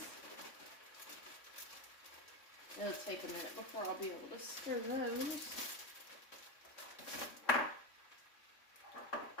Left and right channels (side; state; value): right; late; 3.6 ms